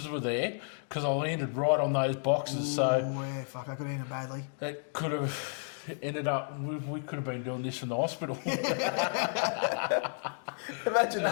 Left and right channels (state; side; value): silent; right; 55 dB below the other